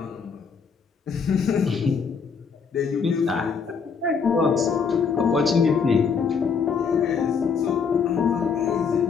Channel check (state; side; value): quieter; right; 5.9 dB